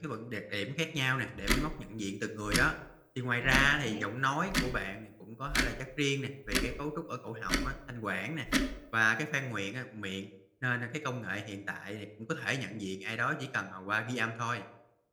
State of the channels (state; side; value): identical; both; correlation 1.00